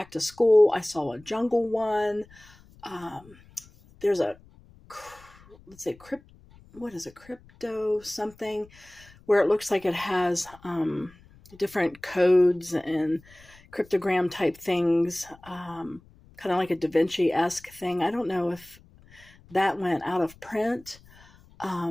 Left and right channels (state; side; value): noise; left; rumble, 25 dB below the sound